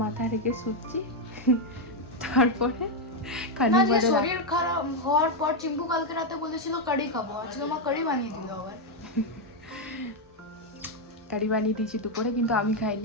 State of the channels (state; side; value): normal; both; correlation 0.02